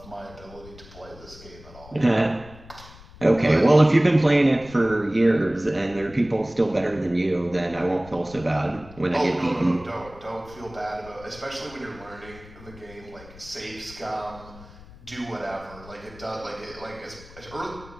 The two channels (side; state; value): left; noise; rumble, 20 dB below the sound